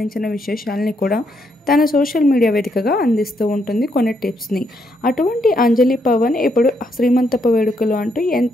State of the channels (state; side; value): normal; both; correlation 0.76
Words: విశేషాలని కూడా తన సోషల్ మీడియా వేదికగా అందిస్తూ ఉంటుంది కొన్ని టిప్స్ని. అటువంటి అంజలి పవన్ ఇప్పుడు శ్రీమంతపు వేడుకలు అంటూ